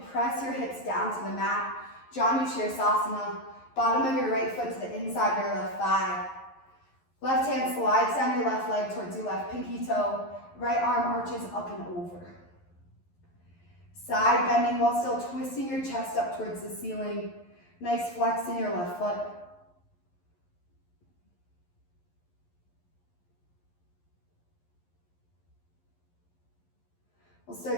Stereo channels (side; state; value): right; late; 11 ms